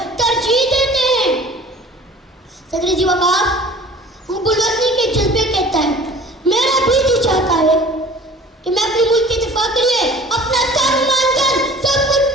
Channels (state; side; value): normal; both; correlation 0.46